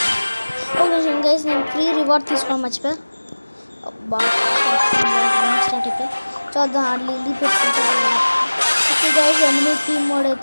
Okay guys, నేను ఫ్రీ రివార్డ్ తీసుకోవడం మర్చిపోయా. స్టార్ట్ అయిపోయి చూద్దాం, లిల్లీ పెట్టుకుంటారు. ఓకే గైస్, ఎనిమిది టీమ్ మోడ్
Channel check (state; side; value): inverted; both; correlation -1.00